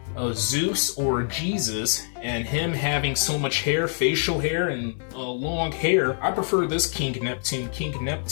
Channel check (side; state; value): right; silent; 58 dB below the other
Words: Zeus or Jesus, and him having so much hair, facial hair, and long hair. I prefer this King Neptune. King